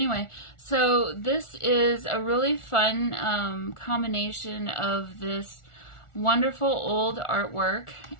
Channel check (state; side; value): late; right; 1.4 ms